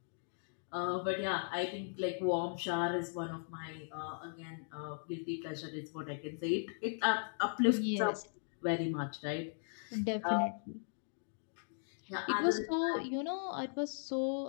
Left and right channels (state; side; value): silent; right; digital silence